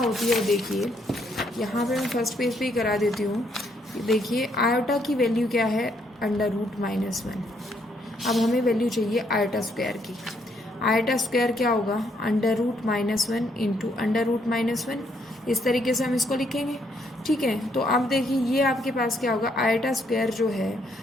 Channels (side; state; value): both; normal; correlation 0.72